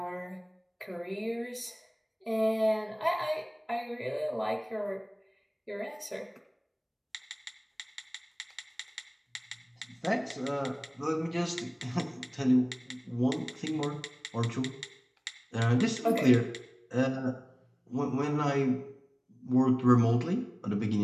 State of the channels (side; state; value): both; identical; correlation 1.00